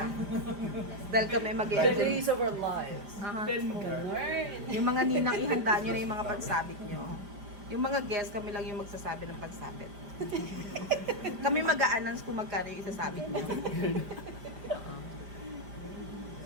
Dahil kami mag-i-enjoy. of our lives. Aha. Yung mga ninang, ihanda nyo na yung mga pansabit nyo. Yung mga guests, kami lang yung magsasabi ng pansabit. Kami mag-a-announce kung magkano yung isasabit nyo.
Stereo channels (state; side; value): late; left; 5.0 ms